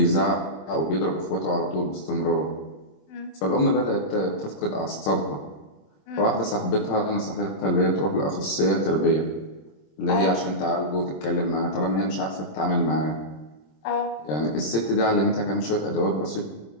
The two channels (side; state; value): right; late; 26 ms